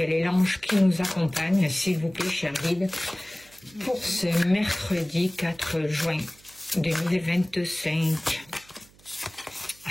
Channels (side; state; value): right; noise; hum, 27 dB below the sound